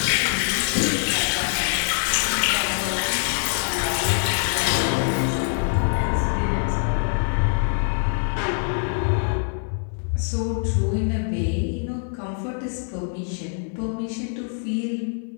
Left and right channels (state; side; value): silent; right; 63 dB below the other